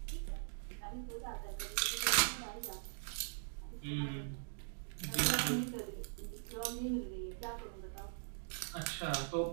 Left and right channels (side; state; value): left; silent; digital silence